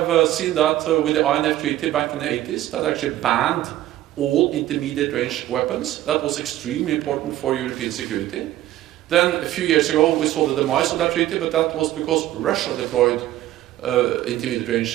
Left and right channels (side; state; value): left; quieter; 14.1 dB